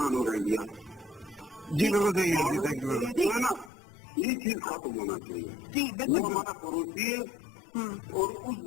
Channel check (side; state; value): right; drops out; at 3.7 s